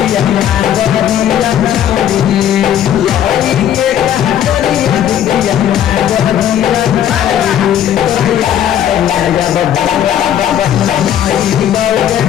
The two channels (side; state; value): right; quieter; 10.3 dB